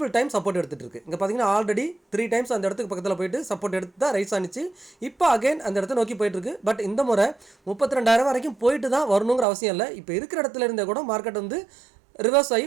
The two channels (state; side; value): drops out; left; at 9.5 s